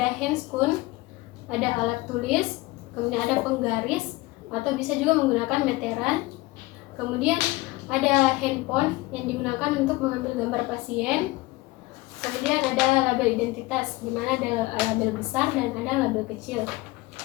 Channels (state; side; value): quieter; right; 20.8 dB